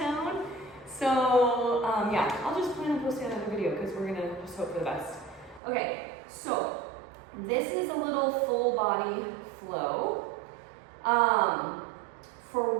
So yeah, I'll just plan on posting another video because we're gonna just hope for the best. Okay, so this is a little full body flow for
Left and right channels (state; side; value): drops out; left; at 5.6 s